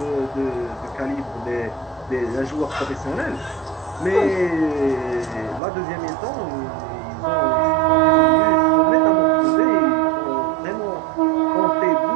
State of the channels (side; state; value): left; drops out; at 5.6 s